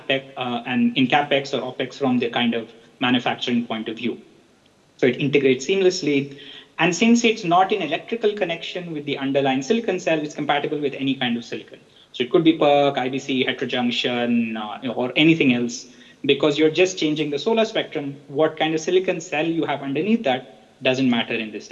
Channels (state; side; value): identical; both; correlation 1.00